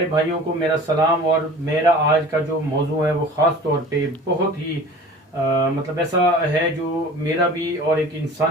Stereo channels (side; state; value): both; normal; correlation 0.42